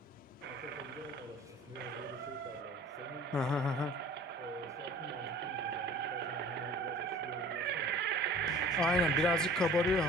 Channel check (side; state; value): both; normal; correlation 0.47